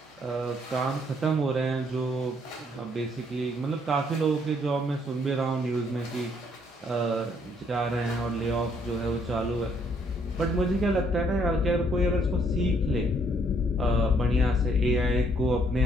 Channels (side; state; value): both; normal; correlation 0.68